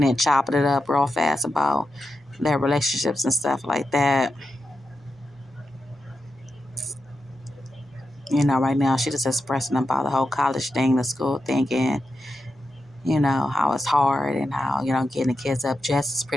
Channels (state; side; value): normal; both; correlation 0.88